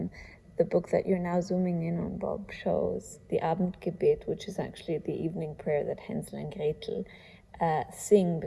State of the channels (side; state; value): both; identical; correlation 1.00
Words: The book that you're now zooming in on, Bob, shows the Abendgebet, which is actually the evening prayer that Hänsel and Gretel sing